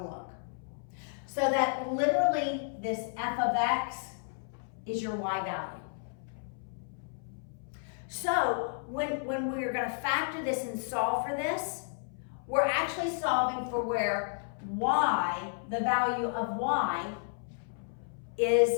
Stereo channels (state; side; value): silent; right; 56 dB below the other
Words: to look. So that literally this f of x is your y value. So when we're going to factor this and solve for this, we're actually solving for where y, the value of y,